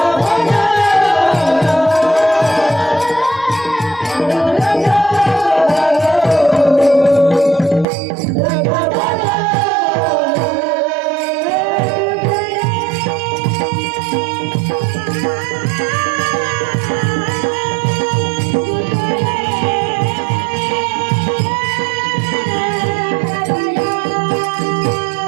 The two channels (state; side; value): drops out; left; at 7.9 s